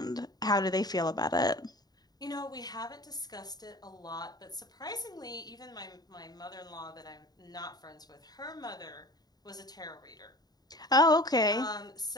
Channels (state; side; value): late; right; 0.19 ms